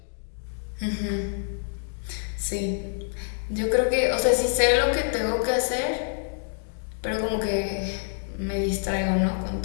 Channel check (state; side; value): silent; right; 59 dB below the other